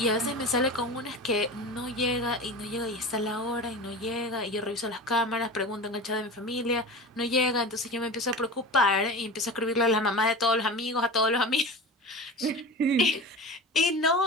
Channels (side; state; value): both; normal; correlation 0.32